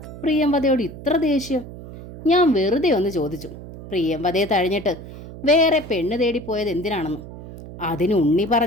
പ്രിയംവദയോട് ഇത്ര ദേഷ്യം? ഞാൻ വെറുതെ ഒന്ന് ചോദിച്ചു. പ്രിയംവദയെ തഴഞ്ഞിട്ട് വേറെ പെണ്ണ് തേടിപ്പോയത് എന്തിനാണെന്ന്. അതിന് ഉണ്ണി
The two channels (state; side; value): noise; right; hum, 13 dB below the sound